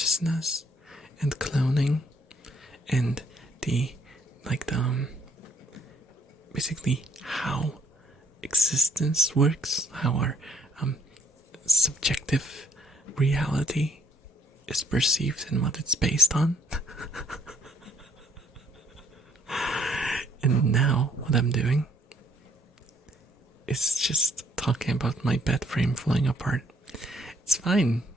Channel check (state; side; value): normal; both; correlation 0.67